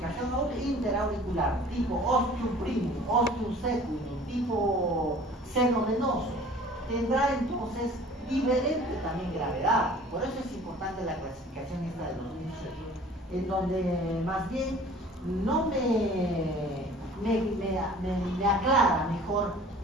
interauricular tipo ostium primum, ostium secundum, tipo senovenoso, tendrá entonces diferente también gravedad. Por eso es importante la clasificación esta de 2007, en donde más bien no me aclara mejor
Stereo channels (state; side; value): normal; both; correlation 0.48